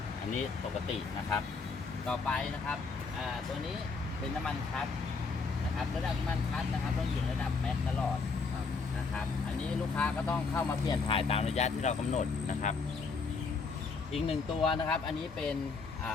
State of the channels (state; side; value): quieter; right; 4.6 dB